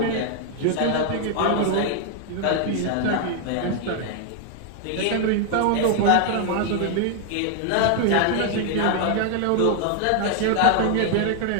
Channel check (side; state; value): both; different; correlation 0.00